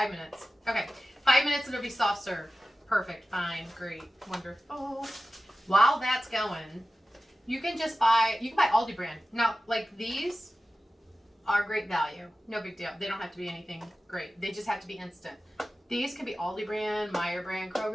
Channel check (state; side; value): normal; both; correlation 0.95